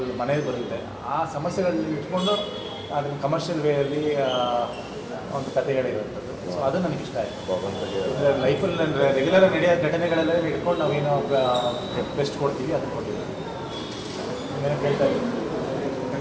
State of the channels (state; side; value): identical; both; correlation 1.00